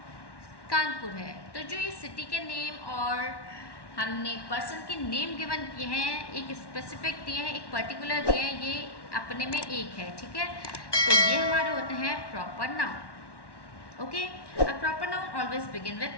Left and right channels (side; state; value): right; late; 1.1 ms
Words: कानपुर है। तो जो ये सिटी के नेम और हमने पर्सन के नेम गिवन किए हैं, एक स्पेसिफिक दिए हैं, एक पर्टिकुलर दिए हैं, ये अपने में एक है, ठीक है। तो ये हमारे होते हैं proper noun. Okay, a proper noun always begin with